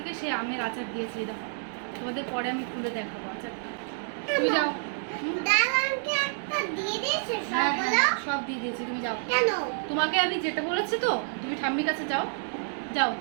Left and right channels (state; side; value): silent; left; digital silence